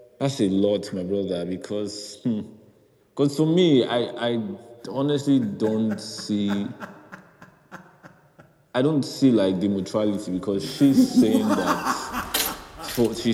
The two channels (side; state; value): both; identical; correlation 1.00